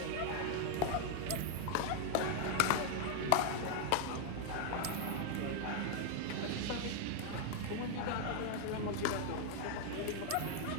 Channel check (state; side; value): different; both; correlation 0.00